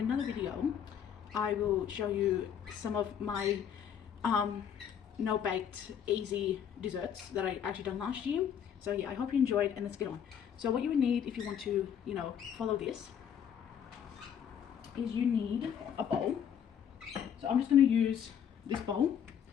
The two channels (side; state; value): right; quieter; 8.5 dB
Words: another video I will show you some of my no-baked easy desserts that I actually done last year. So yeah, I hope you enjoyed, and let's get on. So what you would need if you want to, you know, follow this is you need a bowl. So I'm just going to use this bowl